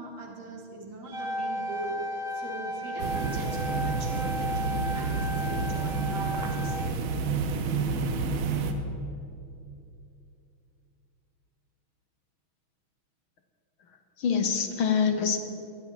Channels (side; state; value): right; late; 6.3 ms